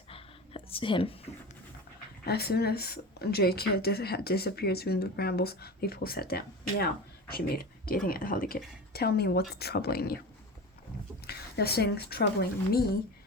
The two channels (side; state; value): both; normal; correlation 0.30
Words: him. As soon as Jake had disappeared through the brambles, Leafpool sat down. Now, she made, gazing at Holly Kit. Tell me what's troubling you. Nothing's troubling me,